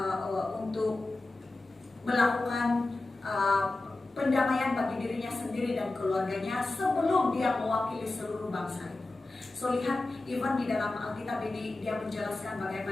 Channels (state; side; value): quieter; right; 3.0 dB